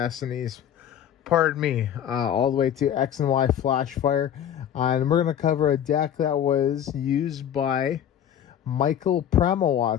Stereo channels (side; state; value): right; quieter; 9.9 dB